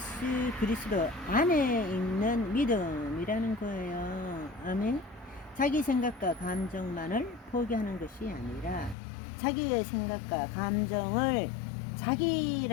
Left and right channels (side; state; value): right; drops out; at 9.0 s